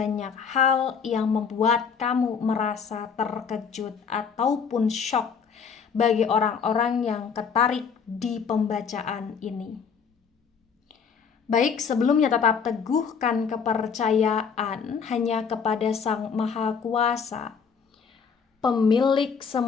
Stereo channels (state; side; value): quieter; right; 6.2 dB